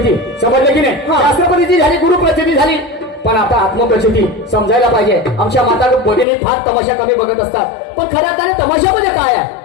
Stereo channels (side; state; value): right; drops out; at 6.2 s